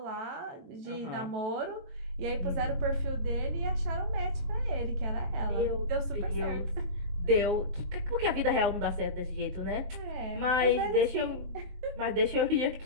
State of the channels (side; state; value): left; late; 22 ms